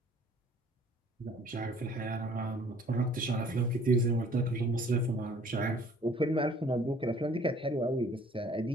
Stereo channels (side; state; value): both; normal; correlation 0.55